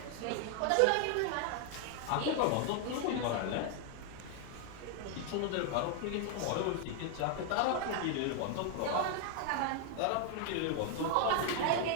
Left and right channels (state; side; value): different; both; correlation 0.00